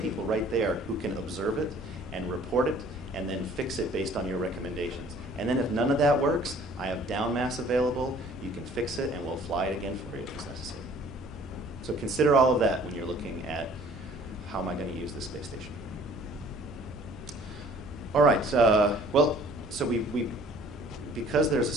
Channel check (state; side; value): normal; both; correlation 0.54